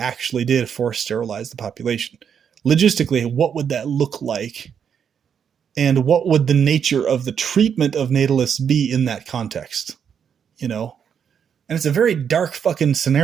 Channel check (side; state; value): left; quieter; 7.6 dB